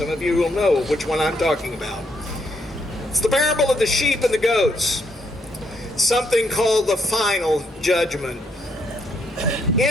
of you will know which one I'm talking about. It's the parable of the sheep and the goats. Something called the final judgment.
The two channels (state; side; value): normal; both; correlation 0.74